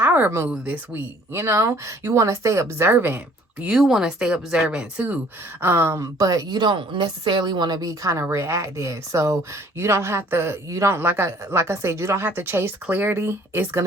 move this week. You want to stay observant. You want to stay observant too. But you don't necessarily want to be kind of reactive. So you don't have to, like I said, you don't have to chase clarity. It's going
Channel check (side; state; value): both; normal; correlation 0.57